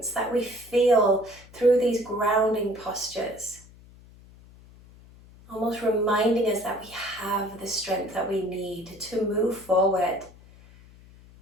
that we feel through these grounding postures? Almost reminding us that we have the strength that we need to move forward.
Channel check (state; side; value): noise; left; hum, 23 dB below the sound